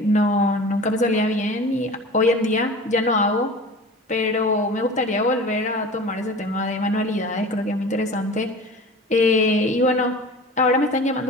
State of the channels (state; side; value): normal; both; correlation 0.38